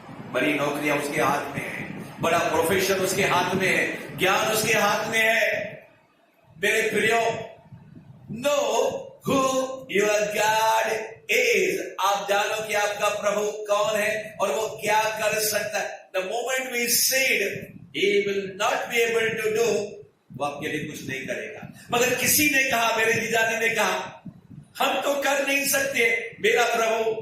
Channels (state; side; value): identical; both; correlation 1.00